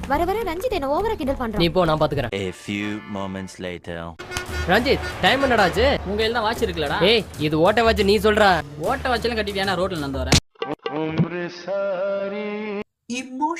வர வர ரஞ்சித் என்ன ஓவரா கிண்டல் பண்றான். நீ போ, நான் பாத்துக்கறேன். A few moments later. Ranjith, time என்னடா ஆச்சு? உங்க கையில தான் வாட்ச் இருக்குலடா. ஏய், இது ஓட்ட வாட்ச். நீ சொல்ற ஓட்ட வாட்ச்லாம் கட்டிட்டியானா? ரோட்ல நடந்து வரேன்.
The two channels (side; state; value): both; identical; correlation 1.00